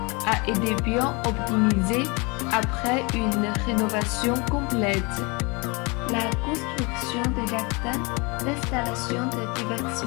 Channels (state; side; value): quieter; right; 28.5 dB